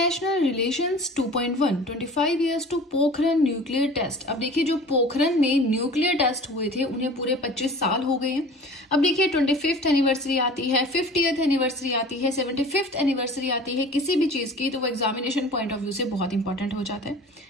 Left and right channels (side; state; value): both; normal; correlation 0.42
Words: relations 2.1 25 years to Pokhran nuclear test. अब देखिए, जो पोखरण में न्यूक्लियर टेस्ट हुए थे उन्हें पूरे 25 साल हो गए हैं। अब देखिए, 25th एनिवर्सरी आती है, 50th एनिवर्सरी आती है, 75th एनिवर्सरी आती है किसी भी चीज की, तो वो एग्जामिनेशन पॉइंट ऑफ व्यू से बहुत इंपॉर्टेंट हो जाता है।